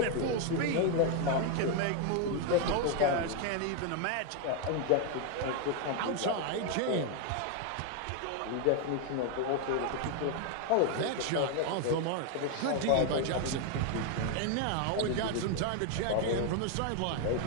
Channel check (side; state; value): both; different; correlation 0.01